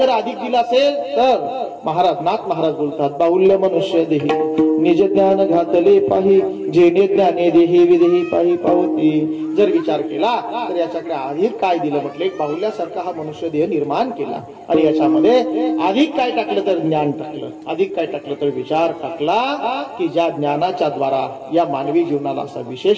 अधिक दिलं असेल तर महाराज नाथ महाराज बोलतात बाहुल्य मनुष्य देही निज ज्ञान घातले पाही जेणे ज्ञाने देही विदेही पाही पावती. जर विचार केला तर याच्याकडे अधिक काय दिलं. म्हटलं एक बाहुल्यासारखा हा मनुष्य देह निर्माण केला आणि याच्यामध्ये अधिक काय टाकलं तर ज्ञान टाकलं, अधिक काय टाकलं तर विचार टाकला की ज्या ज्ञानाच्या द्वारा या मानवी जीवनाला असा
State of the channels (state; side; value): identical; both; correlation 1.00